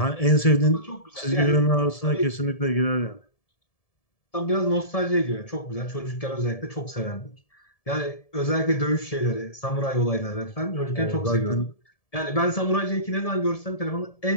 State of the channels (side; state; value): right; late; 1.7 ms